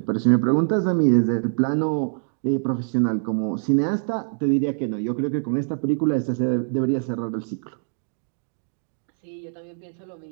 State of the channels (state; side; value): silent; left; digital silence